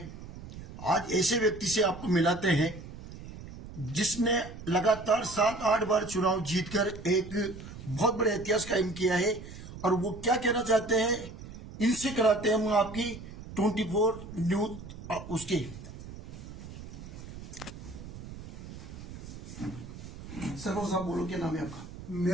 आज ऐसे व्यक्ति से आपको मिलाते हैं जिसने लगातार 7-8 बार चुनाव जीतकर एक बहुत बड़े इतिहास कायम किया है। और वो क्या कहना चाहते हैं, इनसे कराते हैं हम आपकी 24 न्यूज उसके। सरपंच साहब बोलो, क्या नाम है आपका?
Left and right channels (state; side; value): noise; right; rumble, 13 dB below the sound